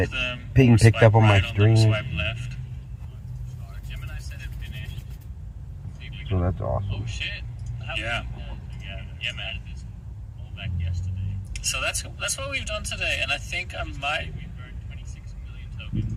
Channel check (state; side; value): identical; both; correlation 1.00